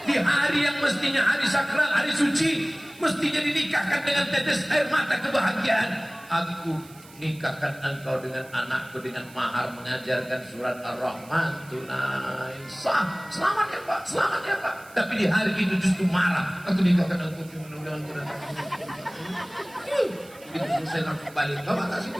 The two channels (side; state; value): right; noise; hiss, 23 dB below the sound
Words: Di hari yang mestinya hari sakral, hari suci, mestinya dinikahkan dengan tetes air mata kebahagiaan. Aku nikahkan engkau dengan anakku dengan mahar mengajarkan surat Ar-Rahman tunai. Sah, selamat ya Pak, selamat ya Pak. Tapi di hari itu justru marah. Aku nikahkan engkau dengan itu selesai langsung balik. Bapak tak situ